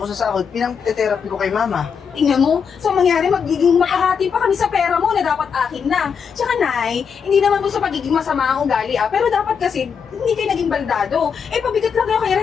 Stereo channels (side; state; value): right; quieter; 6.6 dB